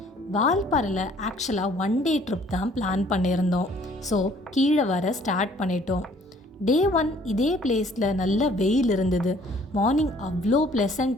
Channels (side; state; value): both; normal; correlation 0.58